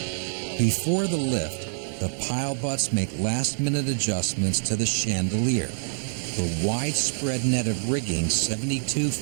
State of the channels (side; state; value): left; silent; 61 dB below the other